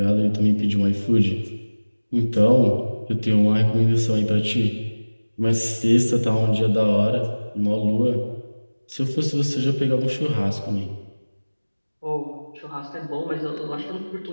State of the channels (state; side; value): inverted; both; correlation -1.00